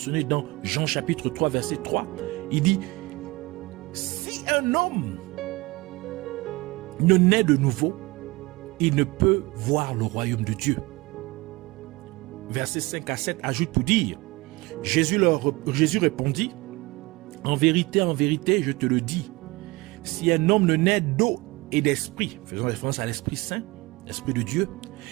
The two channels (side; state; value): left; quieter; 22.6 dB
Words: dans Jean chapitre 3 verset 3. Il dit: si un homme ne naît de nouveau, il ne peut voir le royaume de Dieu. Versets 5 à 7 ajoute pour dire: Jésus répondit: en vérité, je te le dis, si un homme ne naît d'eau et d'esprit, faisant référence à l'Esprit Saint, l'Esprit de Dieu,